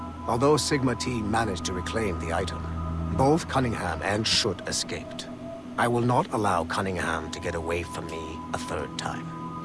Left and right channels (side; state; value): both; identical; correlation 1.00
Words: Although Sigma Team managed to reclaim the item, both Cunningham and Schutt escaped. I will not allow Cunningham to get away from me a 3rd time.